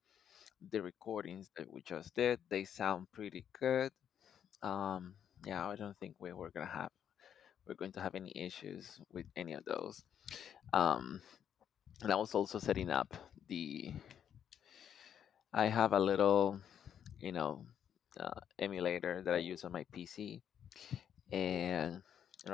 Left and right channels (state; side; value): quieter; right; 9.0 dB